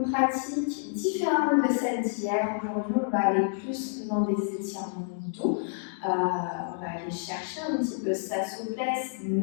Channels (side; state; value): right; silent; digital silence